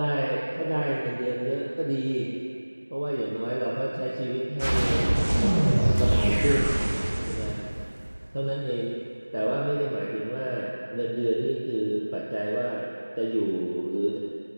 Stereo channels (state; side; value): inverted; both; correlation -1.00